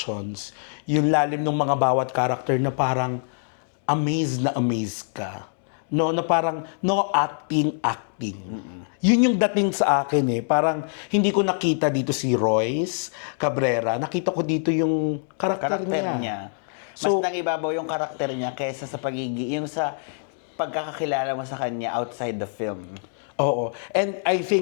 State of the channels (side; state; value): right; silent; 62 dB below the other